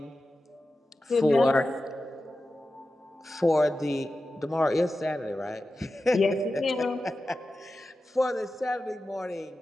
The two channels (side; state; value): both; normal; correlation 0.93